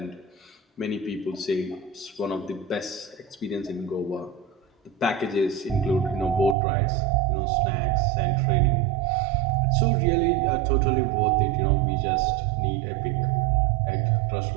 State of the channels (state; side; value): drops out; left; at 6.6 s